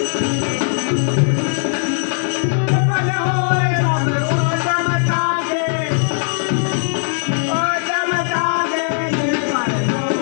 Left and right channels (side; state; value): right; silent; digital silence